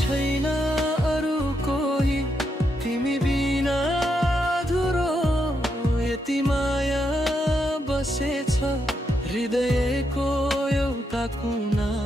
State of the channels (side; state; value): both; normal; correlation 0.81